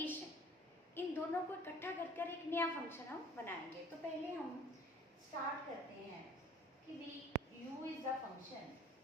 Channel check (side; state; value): both; normal; correlation 0.49